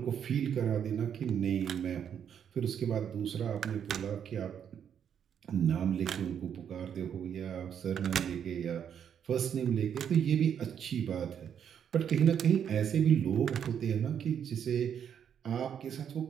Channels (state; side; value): quieter; left; 8.5 dB